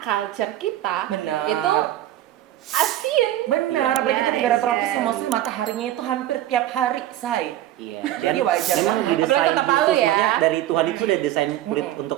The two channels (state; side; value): quieter; left; 13.5 dB